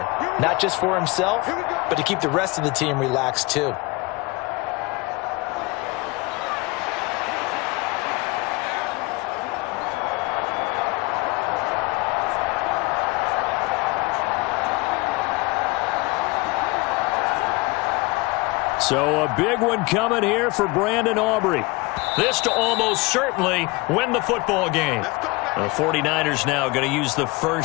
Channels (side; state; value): right; quieter; 24.4 dB